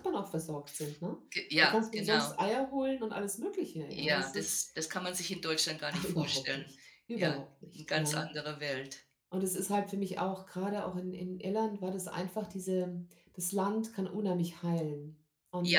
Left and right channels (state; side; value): identical; both; correlation 1.00